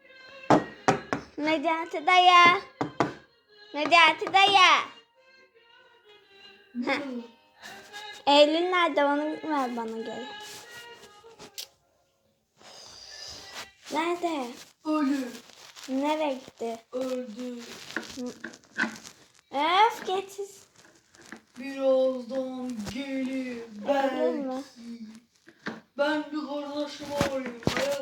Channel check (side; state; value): both; identical; correlation 1.00